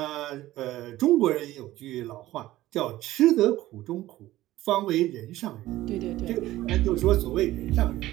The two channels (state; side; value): quieter; left; 15.8 dB